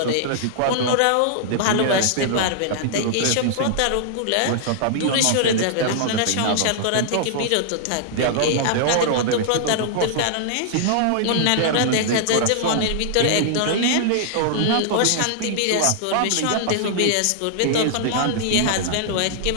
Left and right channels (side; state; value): both; different; correlation -0.01